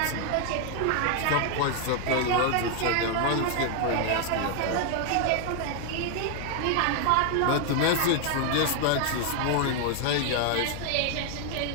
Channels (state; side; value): different; both; correlation 0.00